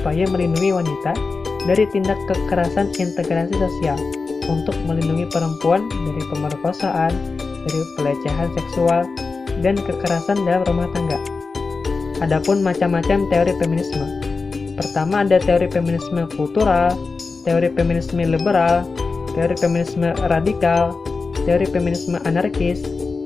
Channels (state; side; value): quieter; right; 4.3 dB